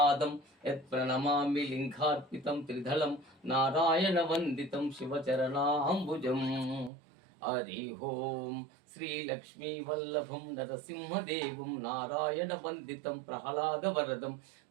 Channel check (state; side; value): drops out; left; at 6.9 s